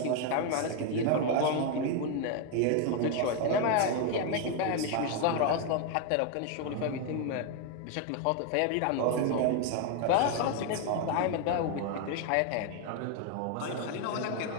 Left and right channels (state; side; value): different; both; correlation 0.01